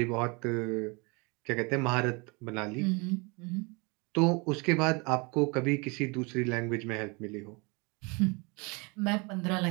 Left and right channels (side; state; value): left; quieter; 29.2 dB